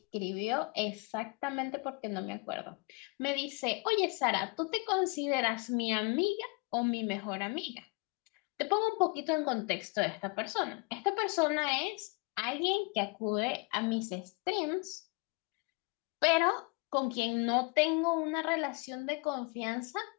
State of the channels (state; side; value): quieter; right; 31.1 dB